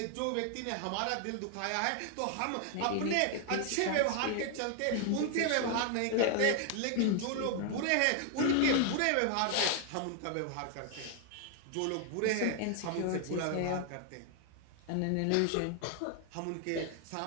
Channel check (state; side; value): different; both; correlation 0.00